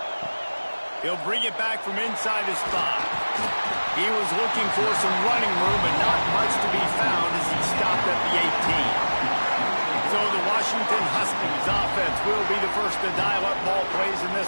He'll bring it back from inside his spot. He was looking for some running room, but not much to be found as he stopped at the 18. So the Washington Huskies offense will be the first to dial up ball plays in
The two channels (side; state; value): both; inverted; correlation -1.00